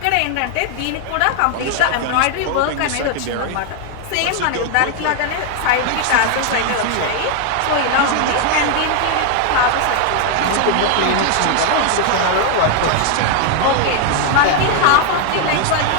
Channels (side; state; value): both; different; correlation 0.01